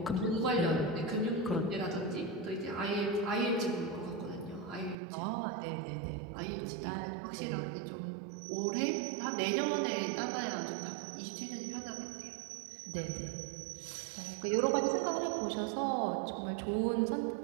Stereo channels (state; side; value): drops out; left; at 5.0 s